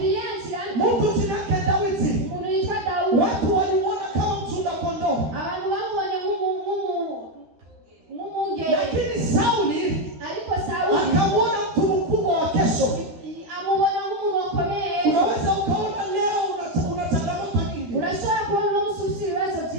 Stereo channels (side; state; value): left; late; 13 ms